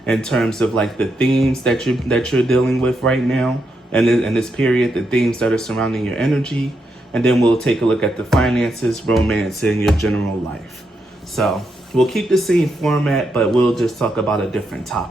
in terms of the themes that you're dealing with right now and in this period, the themes that are surrounding your energy, and then we'll take a look at the finances, romance, and your general life. So we'll keep the same format, but we'll just talk about a different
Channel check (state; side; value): normal; both; correlation 0.82